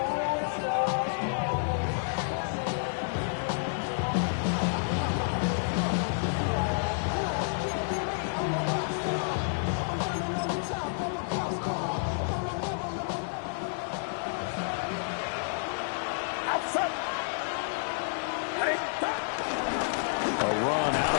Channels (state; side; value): silent; right; digital silence